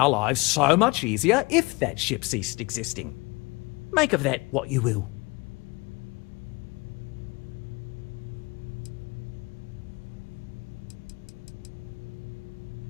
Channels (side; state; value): right; quieter; 25.9 dB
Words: lives so much easier if that ship ceased existing. Make of that what you will.